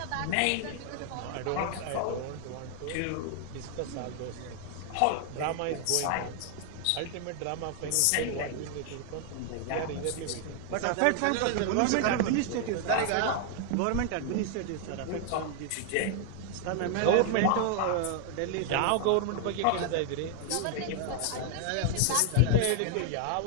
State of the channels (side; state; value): both; different; correlation 0.00